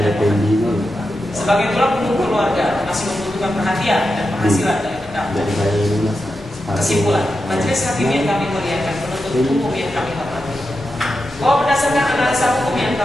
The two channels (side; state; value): both; normal; correlation 0.89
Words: dan sebagai tulang punggung keluarga masih membutuhkan perhatian dan penghasilan dari terdakwa. Kesimpulan, majelis hakim yang kami muliakan, penuntut umum yang kami hormati, bahwa berdasarkan analisa hukum yang